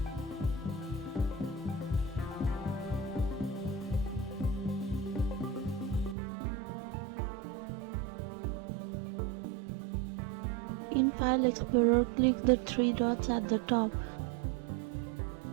In File Explorer, click the three dots at the top.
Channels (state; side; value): drops out; left; at 6.2 s